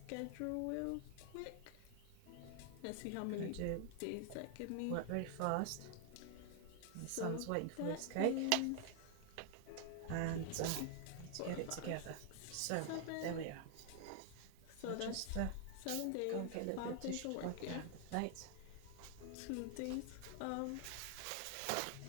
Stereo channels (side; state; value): both; different; correlation 0.00